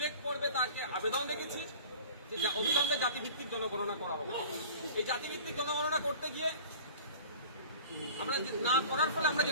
করবে তাকে আবেদন রেখেছি যে অবিলম্বে জাতিভিত্তিক জনগণনা করা হবে। এই জাতিভিত্তিক জনগণনা করতে গিয়ে আমরা না করার ফলে আমরা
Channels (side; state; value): both; inverted; correlation -0.41